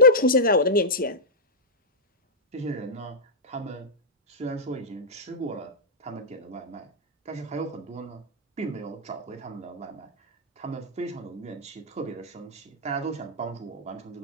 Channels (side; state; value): both; normal; correlation -0.10